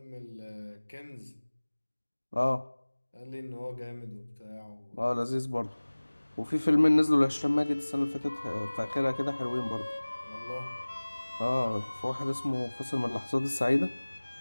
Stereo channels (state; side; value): inverted; both; correlation -1.00